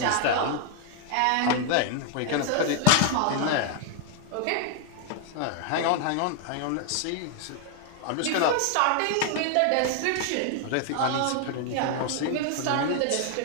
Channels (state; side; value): different; both; correlation 0.00